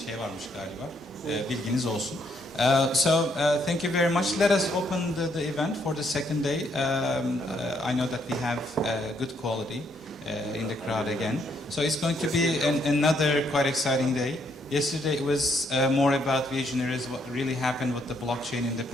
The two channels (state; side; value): normal; both; correlation 0.72